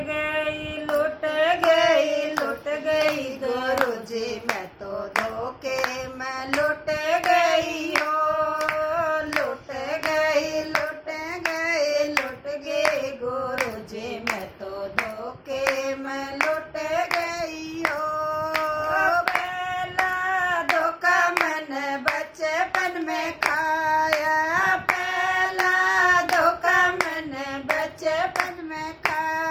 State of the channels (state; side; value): identical; both; correlation 1.00